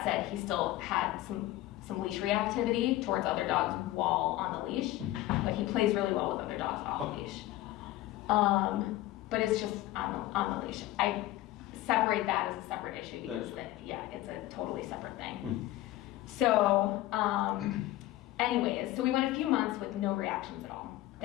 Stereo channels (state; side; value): quieter; right; 16.0 dB